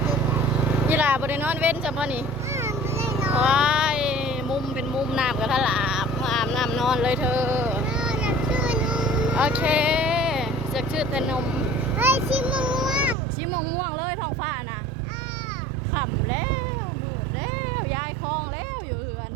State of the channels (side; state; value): left; drops out; at 13.2 s